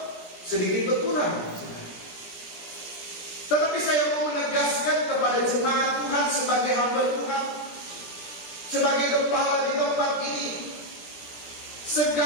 sedikit berkurang? Tetapi saya mau menegaskan kepada jemaat Tuhan sebagai hamba Tuhan, sebagai kepala di tempat ini,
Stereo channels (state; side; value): late; right; 17 ms